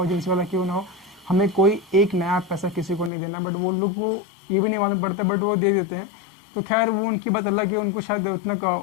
एजेंसी वाला क्यों ना हो, हमें कोई एक नया पैसा किसी को नहीं देना। बट वो लोग को ये भी नहीं मालूम पड़ता, बट वो दे देते हैं। तो खैर वो उनकी बात अलग है, उनको शायद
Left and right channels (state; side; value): drops out; right; at 3.1 s